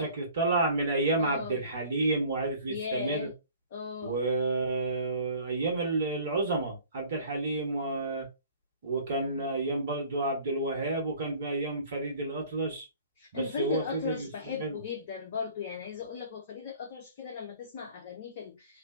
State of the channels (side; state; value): both; inverted; correlation -0.51